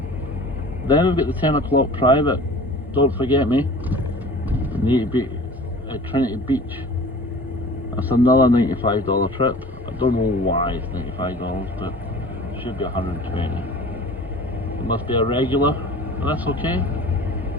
Then we've got the 10 o'clock private. Don't forget me. I need to be at Trinity Beach. That's another $95 trip. I don't know why it's $95, but it should be 120. It must be a regular, but that's okay.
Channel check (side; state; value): both; normal; correlation 0.42